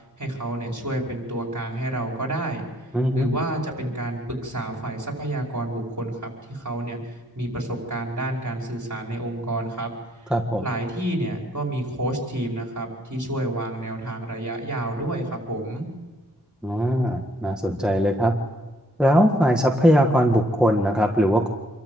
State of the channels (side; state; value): both; normal; correlation 0.68